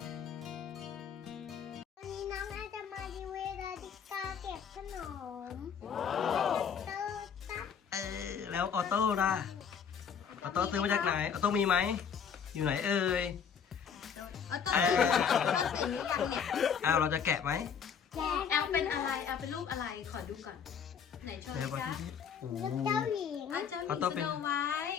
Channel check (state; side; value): quieter; right; 7.3 dB